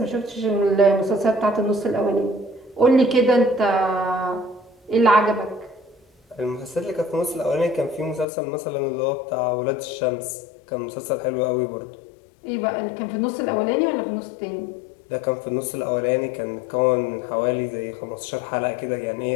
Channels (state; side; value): drops out; right; at 8.2 s